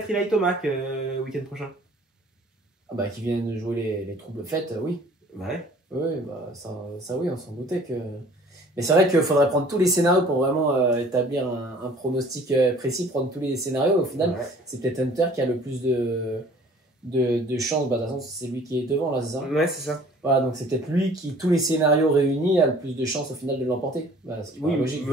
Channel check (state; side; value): normal; both; correlation 0.51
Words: Eli Tomac week-end prochain. Ah bah qui viennent de jouer les troubles fêtes, oui. Ouais. Oui, bah ça oui, on s'en doutait que. Mais c'est vrai qu'il faudrait prendre tous les scénarios pour vraiment établir un pronostic précis, prendre tous les scénarios. Au final, c'est peut-être Hunter qui a le plus de chances. Bah, de toute façon, c'est lui qui est devant là, c'est ça? Ouais, c'est ça. Voilà, donc c'est peut-être lui qui, tous les scénarios réunis, a le plus de chances au final de l'emporter. Bah, Oui, logique,